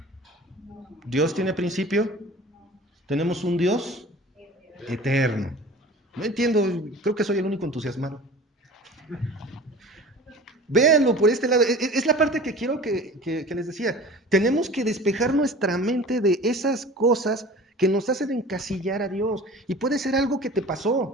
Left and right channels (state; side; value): normal; both; correlation 0.41